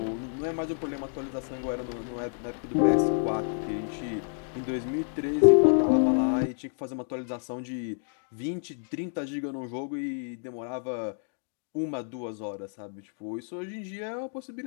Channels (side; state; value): right; silent; 58 dB below the other